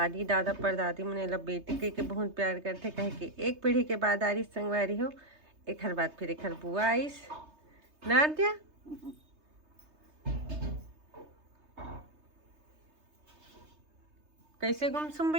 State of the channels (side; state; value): left; late; 3.3 ms